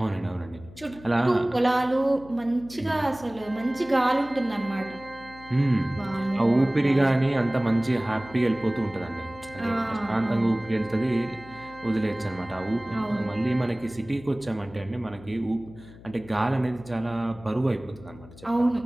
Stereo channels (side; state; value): left; noise; hum, 19 dB below the sound